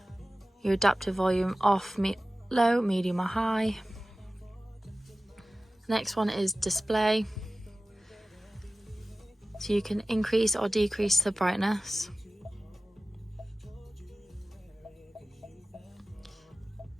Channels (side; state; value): both; normal; correlation 0.96